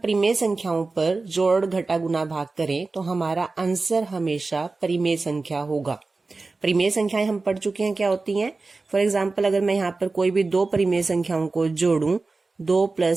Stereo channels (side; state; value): left; quieter; 3.7 dB